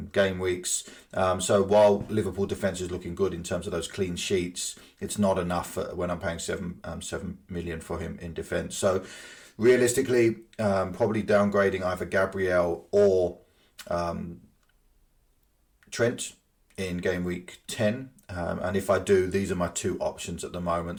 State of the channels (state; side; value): identical; both; correlation 1.00